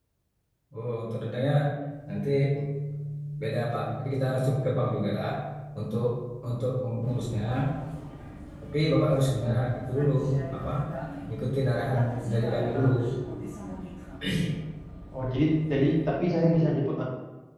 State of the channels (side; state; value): both; identical; correlation 1.00